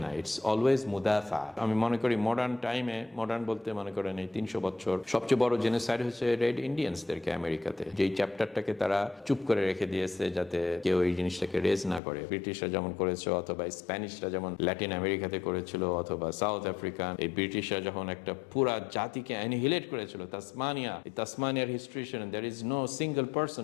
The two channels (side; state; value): right; drops out; at 12.0 s